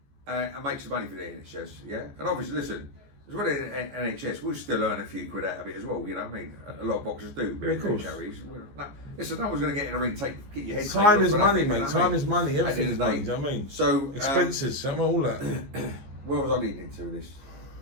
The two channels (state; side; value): late; left; 15 ms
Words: Yeah. And make some money for the NHS. Yeah. And obviously, listen, as well as NHS, we'll still earn a few quid out of it as well. You know what I mean? A lot of boxers do. Yeah, of course. Listen, no one's going to get in the ring. Get your head. Time is money, mate. Time is money. Everything is money. Do you know what I mean? So expenses, all that. Where was I leading to this?